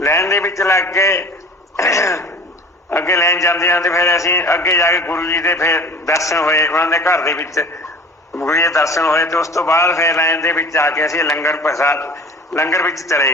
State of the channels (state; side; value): normal; both; correlation 0.42